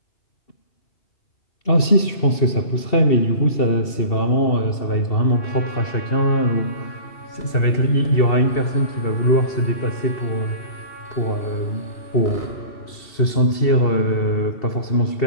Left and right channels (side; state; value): right; late; 2.7 ms